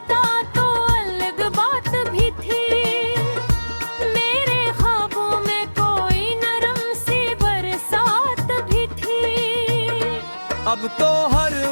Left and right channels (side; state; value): both; inverted; correlation -1.00